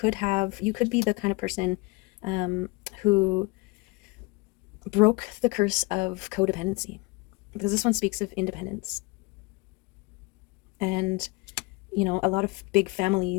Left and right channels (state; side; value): quieter; right; 25.4 dB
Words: be the kind of person who broke the curse of codependency, because this one speaks of independence. And, a lot of big